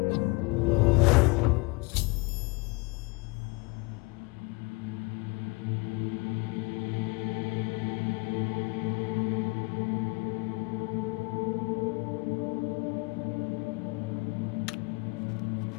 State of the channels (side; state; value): right; quieter; 27.6 dB